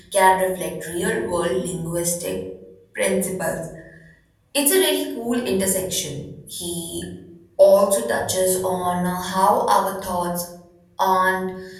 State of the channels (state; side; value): identical; both; correlation 1.00